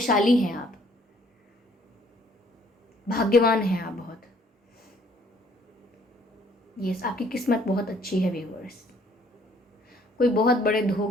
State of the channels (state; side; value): normal; both; correlation 0.62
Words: हैं आप, भाग्यवान हैं आप बहुत। यस, आपकी किस्मत बहुत अच्छी है व्यूवर्स। कोई बहुत बड़े